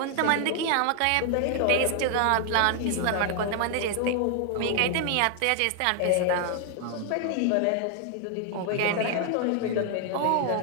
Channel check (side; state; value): both; different; correlation 0.00